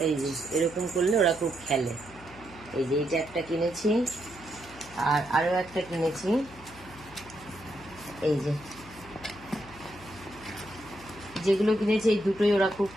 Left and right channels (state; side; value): noise; left; hum, 20 dB below the sound